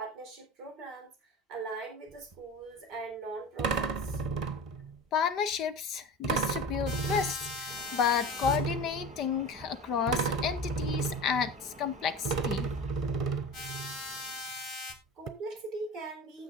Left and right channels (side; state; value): both; normal; correlation 0.32